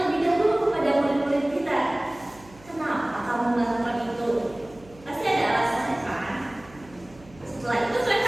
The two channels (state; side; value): noise; right; hum, 24 dB below the sound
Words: dahulu kepada murid-murid kita, kenapa kamu melakukan itu? Pasti ada alasannya kan? Setelah itu